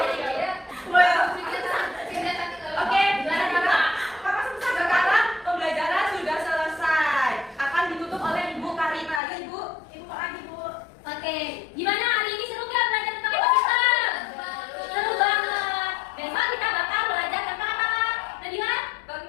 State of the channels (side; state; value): right; drops out; at 9.2 s